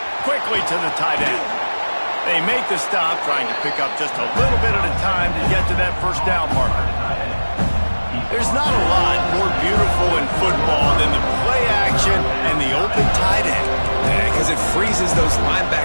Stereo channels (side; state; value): both; inverted; correlation -1.00